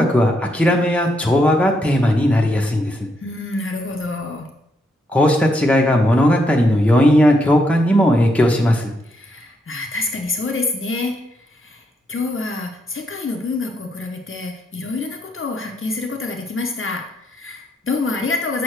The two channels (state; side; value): normal; both; correlation 0.78